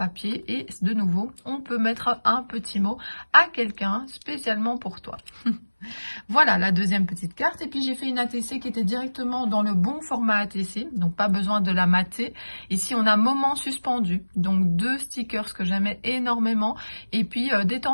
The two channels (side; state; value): both; inverted; correlation -1.00